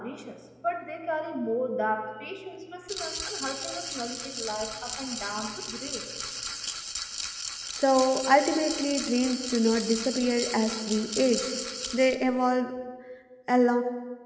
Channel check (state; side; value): identical; both; correlation 1.00